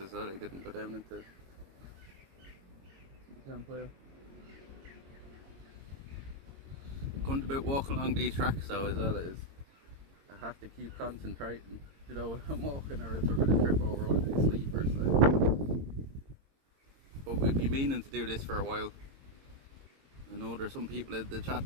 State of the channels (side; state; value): left; late; 22 ms